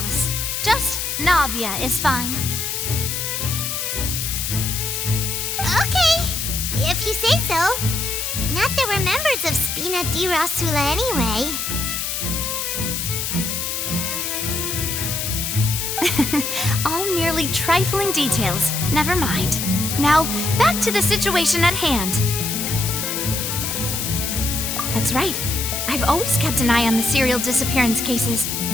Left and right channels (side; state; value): left; noise; hiss, 2 dB below the sound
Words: Just Navia is fine. Okay, if you say so. Not that we're members of Spina di Rosula anyway. All merely trifling details. Never mind. Now, back to the situation at hand. That's right. I've always kept an eye on the serial disappearance cases.